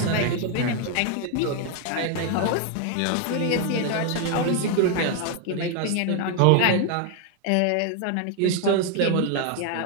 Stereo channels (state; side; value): different; both; correlation 0.01